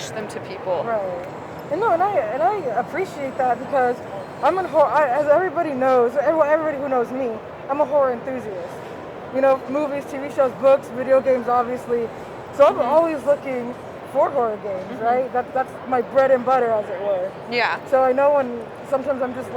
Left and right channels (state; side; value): identical; both; correlation 1.00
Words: them to people. Right. And I appreciate that, because I'm a horror. As everybody knows, everybody who knows me, I'm a horror enthusiast. Movies, TV shows, books, video games, obviously. So I'm always looking for horror games, right? That's my bread and butter, as it were. Yeah. So I know when sometimes I'm